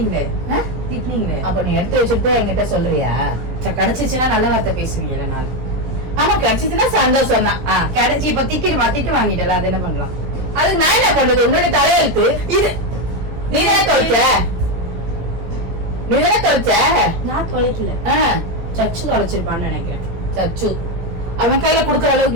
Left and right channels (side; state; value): left; late; 17 ms